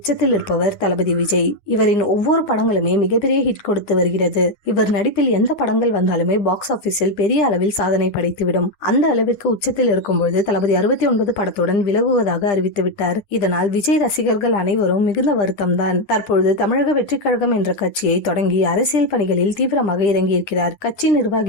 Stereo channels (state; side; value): late; right; 9.9 ms